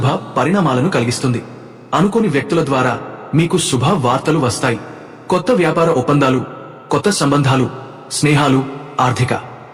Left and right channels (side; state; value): both; identical; correlation 1.00